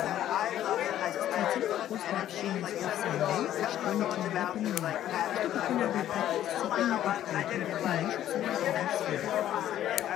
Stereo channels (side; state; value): right; quieter; 12.0 dB